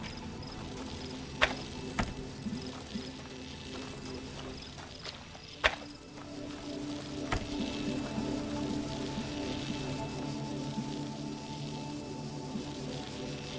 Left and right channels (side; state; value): both; identical; correlation 1.00